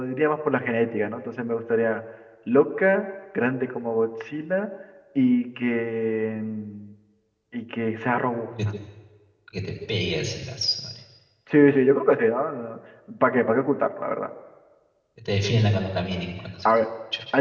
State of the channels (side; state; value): both; identical; correlation 1.00